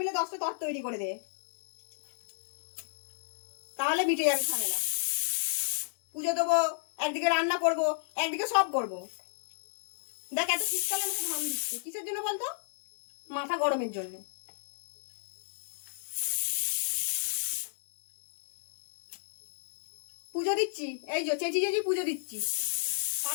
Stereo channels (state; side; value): silent; right; digital silence